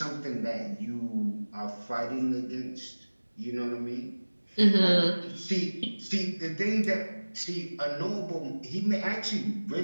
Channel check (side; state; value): both; inverted; correlation -1.00